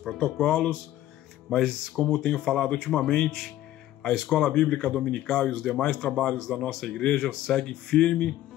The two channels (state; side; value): quieter; right; 13.9 dB